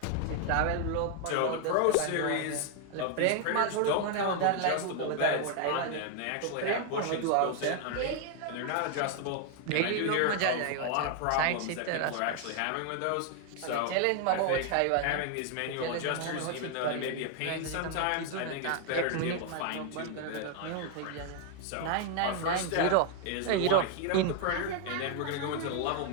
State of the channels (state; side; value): different; both; correlation 0.01